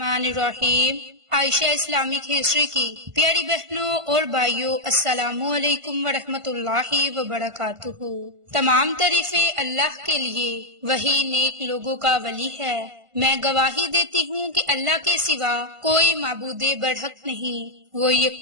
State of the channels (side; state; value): left; late; 1.5 ms